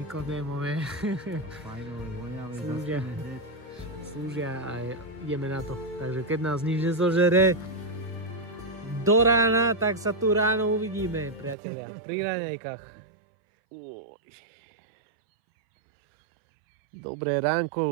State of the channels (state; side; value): drops out; left; at 11.6 s